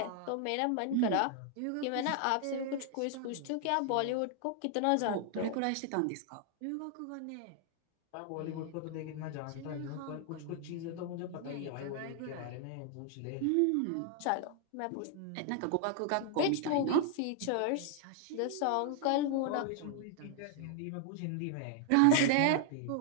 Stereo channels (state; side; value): different; both; correlation 0.00